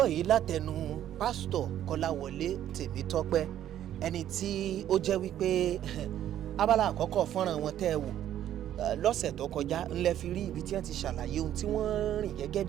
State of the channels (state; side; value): quieter; left; 11.4 dB